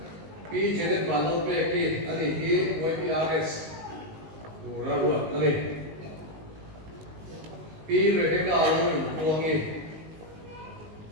bi jenet balol pe ki ani hi YPRS nuraru ani bi rebeka alo tuangi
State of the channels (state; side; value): late; left; 19 ms